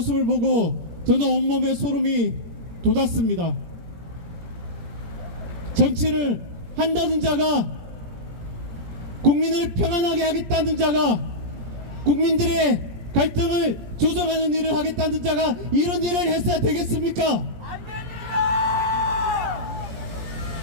보고 저는 온몸에 소름이 돋았습니다. 정치를 한다는 자가, 국민을 평안하게 하겠다는 자가, 국민들의 갈등을 조정하는 일을 하겠다는 자가 이런 일을 했어야 되겠습니까? 안 됩니다!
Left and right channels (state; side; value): late; left; 17 ms